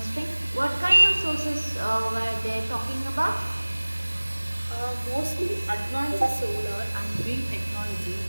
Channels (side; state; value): both; inverted; correlation -1.00